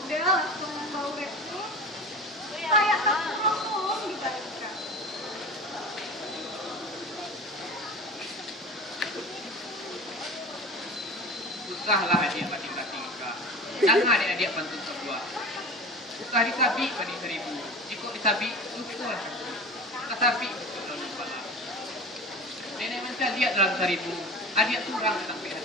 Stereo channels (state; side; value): normal; both; correlation 0.34